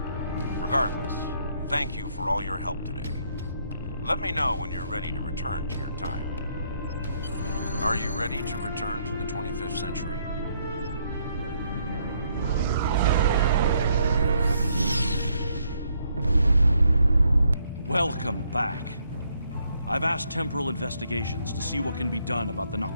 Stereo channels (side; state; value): both; inverted; correlation -0.72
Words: Regardless, thank you for all your help today. Let me know when you're ready to return to your time. Are you ready to return to the 25th century? Welcome back. I've asked Temporal Investigations to see what can be done about the